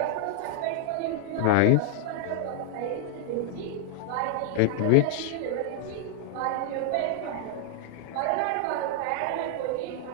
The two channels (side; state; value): both; different; correlation 0.00